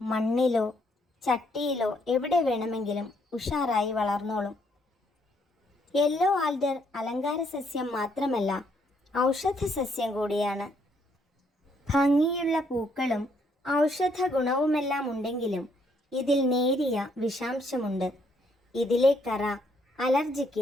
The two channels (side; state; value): both; normal; correlation 0.71